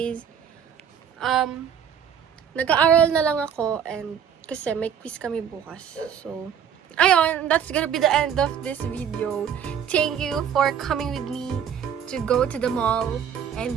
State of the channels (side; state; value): left; quieter; 8.3 dB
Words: nag-aaral na lang ako and kasi may quiz kami bukas. So, ayun, that's gonna be the end of this video. Thank you for coming with me to go to the mall